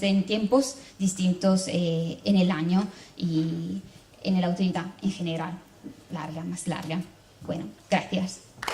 en tiempos distintos en el año y en la autoridad en general, más larga. Bueno, gracias.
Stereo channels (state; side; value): identical; both; correlation 1.00